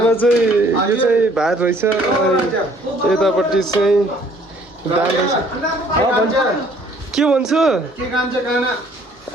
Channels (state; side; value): normal; both; correlation 0.59